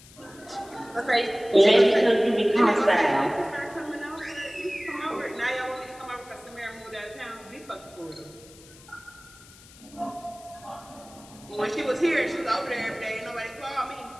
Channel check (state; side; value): noise; left; hiss, 22 dB below the sound